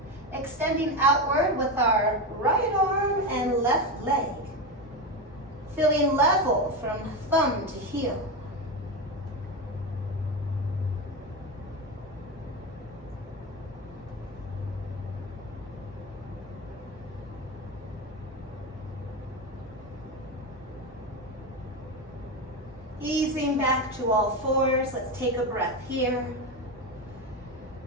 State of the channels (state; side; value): normal; both; correlation 0.16